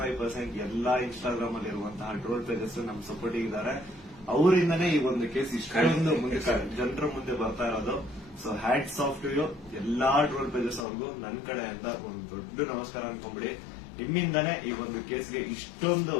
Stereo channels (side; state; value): right; drops out; at 10.9 s